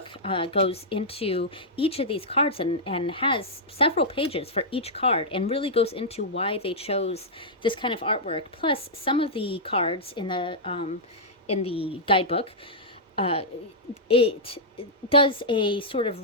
goes into each of these cards and has several pages for each card, and really goes into why they chose this kind of artwork. Plus, some of the cards in the guidebook, it does a sort of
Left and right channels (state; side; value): normal; both; correlation -0.09